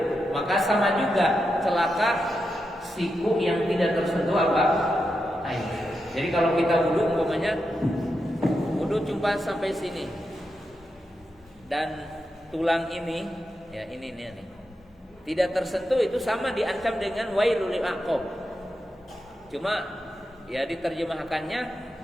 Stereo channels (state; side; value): normal; both; correlation 0.87